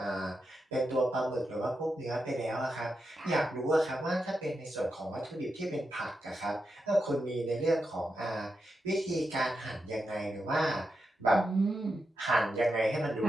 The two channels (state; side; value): normal; both; correlation 0.87